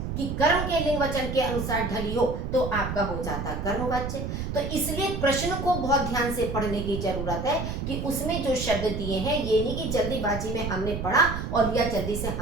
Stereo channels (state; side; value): noise; right; rumble, 4 dB below the sound